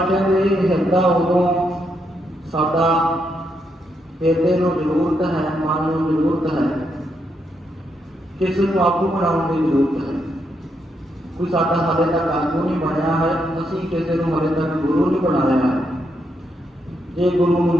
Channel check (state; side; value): normal; both; correlation 0.79